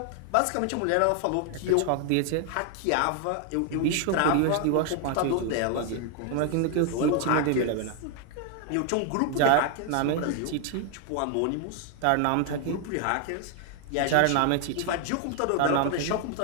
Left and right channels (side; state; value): both; different; correlation 0.00